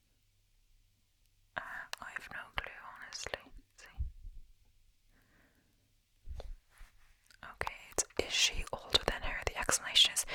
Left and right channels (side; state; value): both; identical; correlation 1.00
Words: I have no clue, honestly. Let's see. Okay, is she older than her? The explanation is